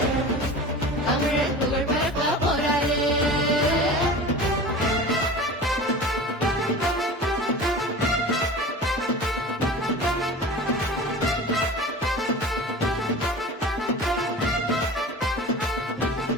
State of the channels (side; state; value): both; normal; correlation 0.35